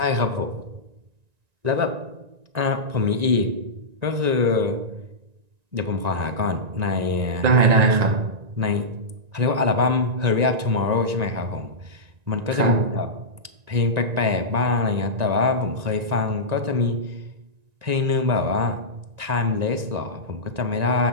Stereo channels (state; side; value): late; left; 1.9 ms